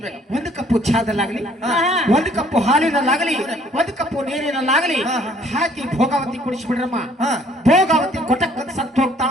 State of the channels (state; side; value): normal; both; correlation 0.60